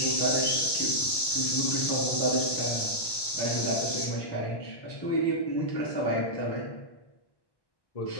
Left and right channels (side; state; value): right; late; 1.2 ms